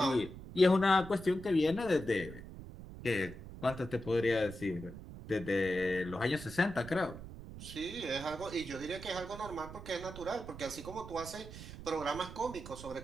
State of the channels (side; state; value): right; noise; rumble, 13 dB below the sound